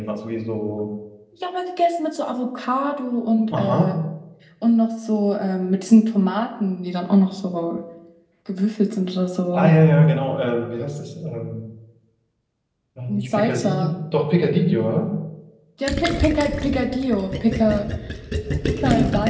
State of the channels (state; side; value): identical; both; correlation 1.00